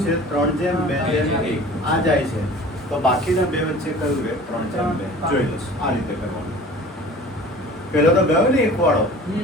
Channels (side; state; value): both; normal; correlation 0.43